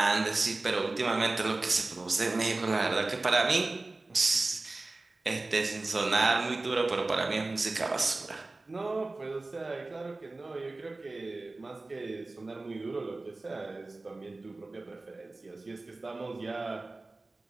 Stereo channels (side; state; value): left; quieter; 3.2 dB